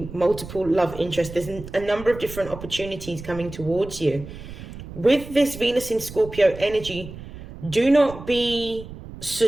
multiple love interests. There's a number of different opportunities coming towards you. With this Venus in Scorpio energy, do not be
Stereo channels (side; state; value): right; noise; rumble, 13 dB below the sound